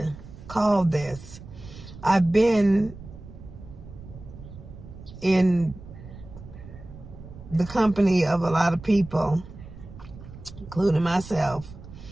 call this. I've been in the company of a lot of people, including myself,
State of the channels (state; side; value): noise; right; rumble, 16 dB below the sound